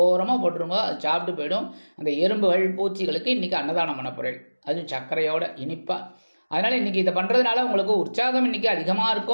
போட்டுருங்க. அது சாப்பிட்டு போயிடும். அந்த எறும்புகள் பூச்சிகளுக்கு இன்னைக்கு அன்னதானம் பண்ண போகிறேன், அதுவும் சர்க்கரையோட இனிப்பாக. அதனால இன்னைக்கு இதை பண்றதுனால உங்களுக்கு உற்சாகம் இன்னைக்கு அதிகமா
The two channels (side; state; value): both; inverted; correlation -1.00